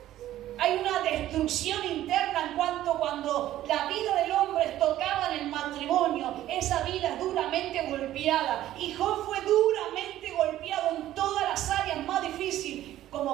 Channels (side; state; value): left; quieter; 13.5 dB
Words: Hay una destrucción interna en cuando la vida del hombre tocaba en el matrimonio. Esa vida es duramente golpeada. Y Job fue duramente golpeado en todas las áreas más difíciles,